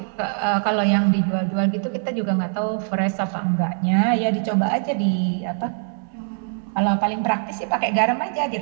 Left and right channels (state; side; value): silent; left; 58 dB below the other